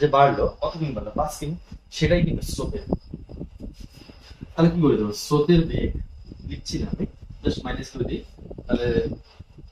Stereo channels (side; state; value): both; identical; correlation 1.00